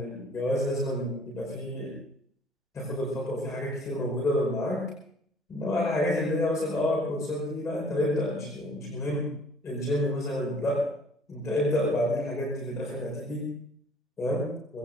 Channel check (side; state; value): both; normal; correlation 0.54